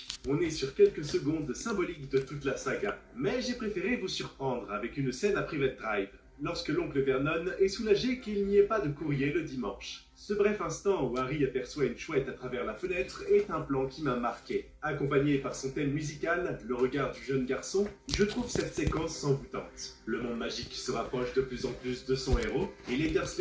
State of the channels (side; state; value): both; identical; correlation 1.00